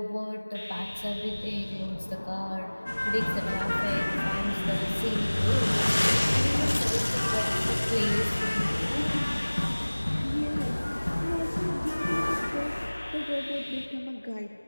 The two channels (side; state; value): both; inverted; correlation -1.00